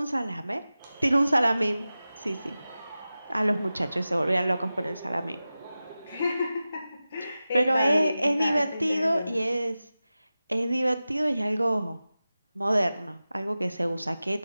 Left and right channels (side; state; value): both; inverted; correlation -0.95